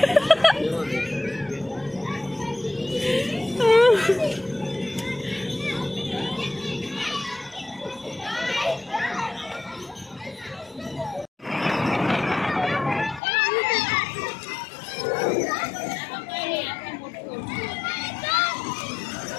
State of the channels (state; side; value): drops out; right; at 13.2 s